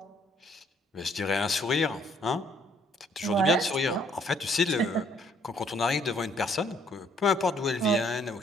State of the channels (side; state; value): both; normal; correlation 0.65